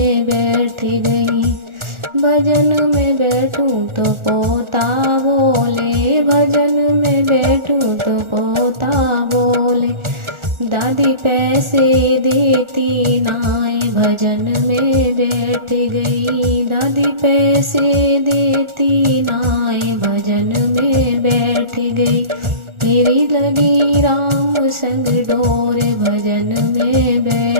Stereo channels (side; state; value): left; late; 1.4 ms